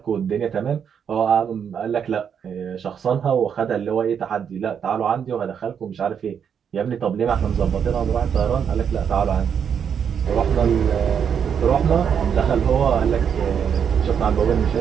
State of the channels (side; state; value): left; quieter; 7.7 dB